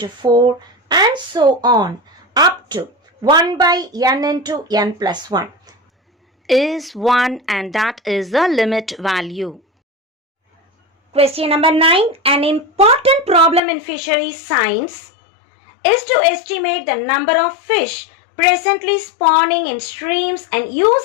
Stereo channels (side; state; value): right; drops out; at 13.6 s